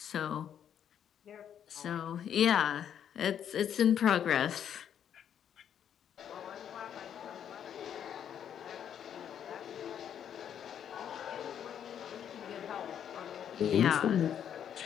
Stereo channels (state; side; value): quieter; right; 9.1 dB